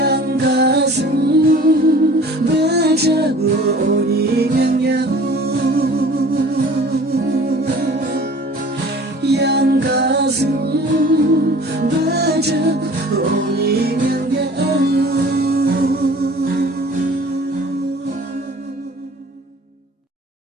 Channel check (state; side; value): normal; both; correlation 0.47